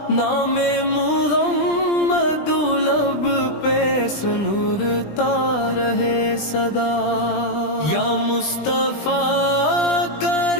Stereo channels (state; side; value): late; right; 20 ms